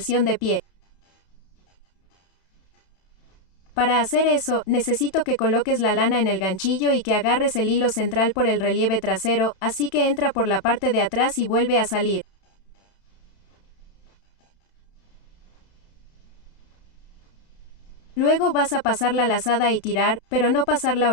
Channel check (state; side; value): late; right; 31 ms